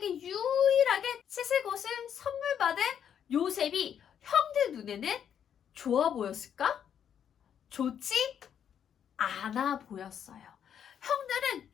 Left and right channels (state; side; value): quieter; right; 8.7 dB